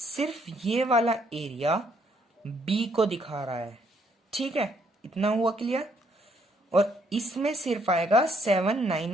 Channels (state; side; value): normal; both; correlation 0.69